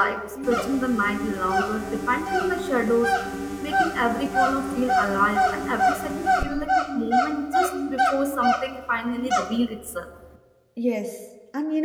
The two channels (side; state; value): both; identical; correlation 1.00